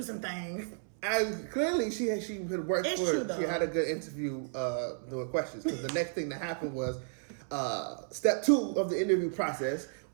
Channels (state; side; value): silent; left; 56 dB below the other